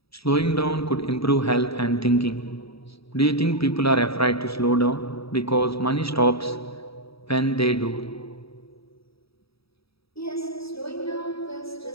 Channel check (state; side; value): late; right; 0.77 ms